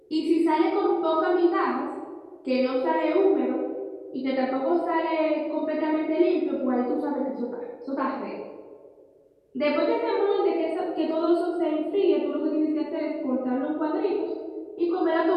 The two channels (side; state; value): both; identical; correlation 1.00